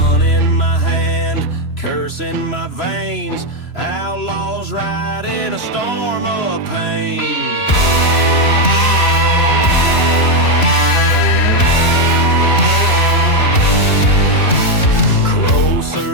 in my hand, curse in my veins. Outlaws ride in a storm of pain.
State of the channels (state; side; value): late; right; 3.0 ms